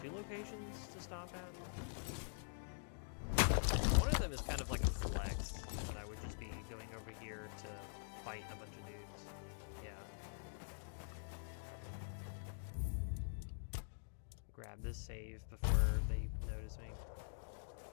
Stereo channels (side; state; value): right; silent; digital silence